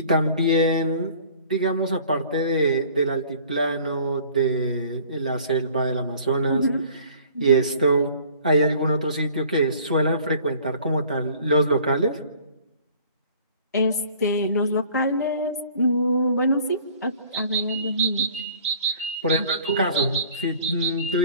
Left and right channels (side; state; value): both; inverted; correlation -0.51